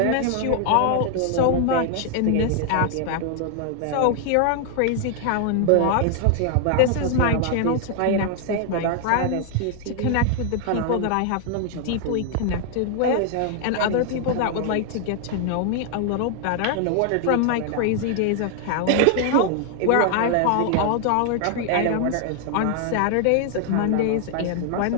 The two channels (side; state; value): both; different; correlation 0.00